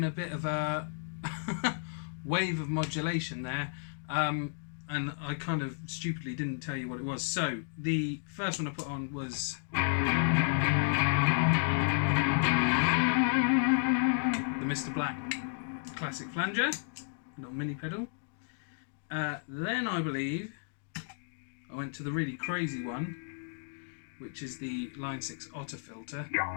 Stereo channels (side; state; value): right; silent; digital silence